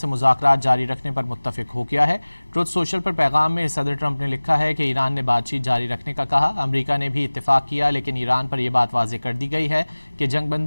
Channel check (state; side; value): inverted; both; correlation -1.00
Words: مذاکرات جاری رکھنے پر متفق ہو گیا ہے۔ ٹروتھ سوشل پر پیغام میں صدر ٹرمپ نے لکھا ہے کہ ایران نے بات چیت جاری رکھنے کا کہا۔ امریکہ نے بھی اتفاق کیا، لیکن ایران پر یہ بات واضح کر دی گئی ہے کہ جنگ